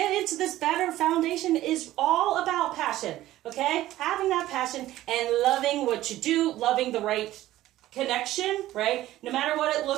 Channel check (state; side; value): quieter; left; 15.0 dB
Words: into this better foundation is all about passion, okay? Having that passion and loving what you do, loving the right connection, right? No matter what it